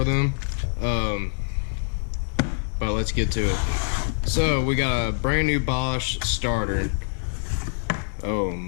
them. But let's get to it. So we got a brand new Bosch starter. Oh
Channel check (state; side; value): silent; right; 62 dB below the other